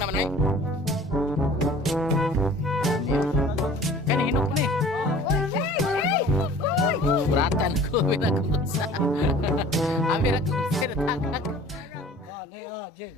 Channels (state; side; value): normal; both; correlation 0.47